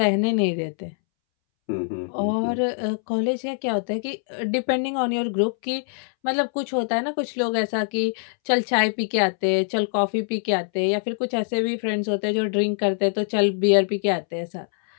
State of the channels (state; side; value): silent; right; 63 dB below the other